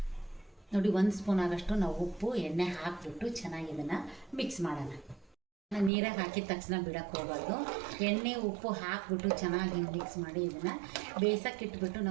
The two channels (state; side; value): drops out; left; at 5.9 s